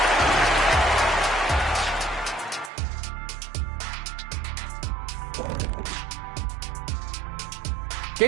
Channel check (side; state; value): left; drops out; at 2.7 s